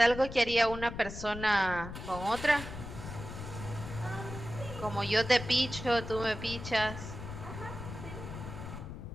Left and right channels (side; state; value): left; noise; rumble, 9 dB below the sound